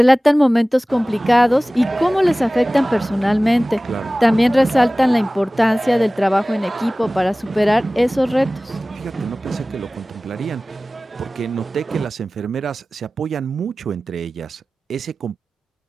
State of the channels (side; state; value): both; normal; correlation 0.98